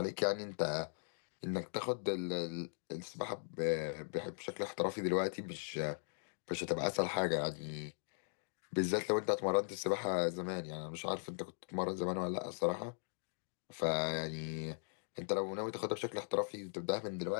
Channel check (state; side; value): silent; right; digital silence